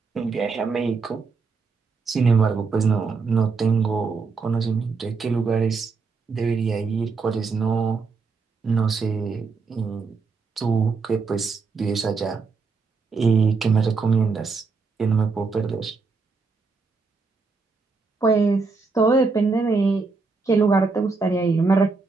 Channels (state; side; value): quieter; left; 4.5 dB